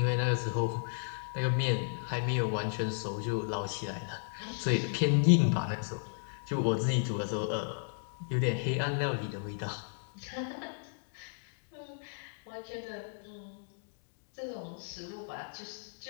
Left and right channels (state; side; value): silent; right; digital silence